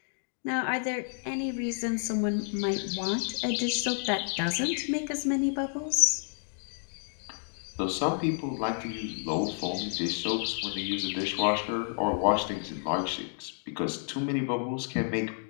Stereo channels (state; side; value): silent; right; 56 dB below the other